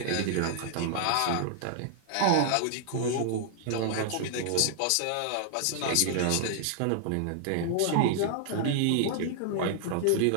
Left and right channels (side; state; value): both; different; correlation -0.01